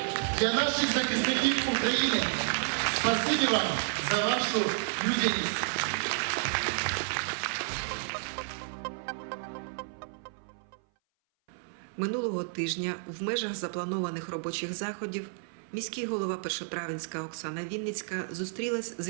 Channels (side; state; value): left; silent; 57 dB below the other